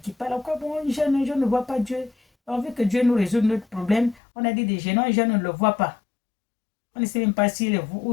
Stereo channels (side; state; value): right; drops out; at 4.2 s